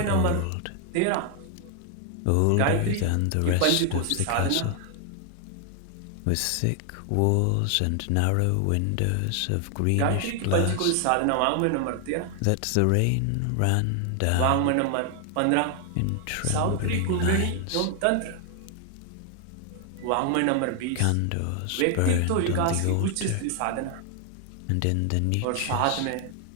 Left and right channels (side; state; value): both; different; correlation 0.00